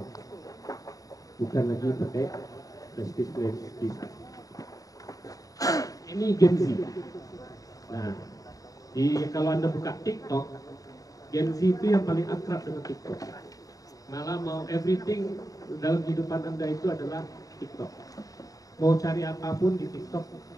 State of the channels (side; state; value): right; late; 0.17 ms